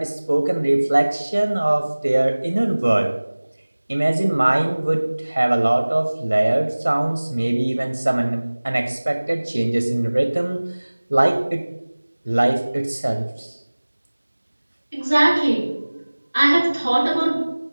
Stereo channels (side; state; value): both; inverted; correlation -1.00